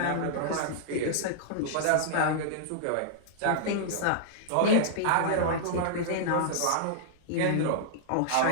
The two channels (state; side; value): different; both; correlation -0.02